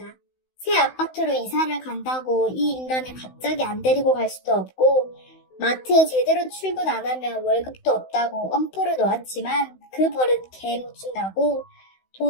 새 아파트로 이사를 간다고 이 인간을 갑자기 안 데리고 갈 수도 없고 마트에 제대로 출근 안 하면 월급도 없다고 엄포를 놓았지만 그 버릇 개 못 준다고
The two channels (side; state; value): right; late; 16 ms